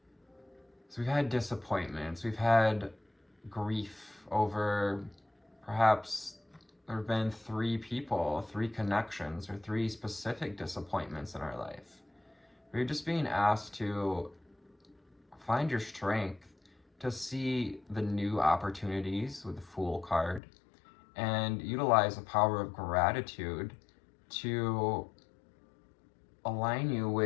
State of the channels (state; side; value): drops out; right; at 20.4 s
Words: So we've had disappointments, we've had grief over perhaps there have been 3 people, 3 connections, or 3 specific disappointments in our life. We're just being asked to find your strength to see the new opportunities with the Fool card and utilize the power of gratitude to align you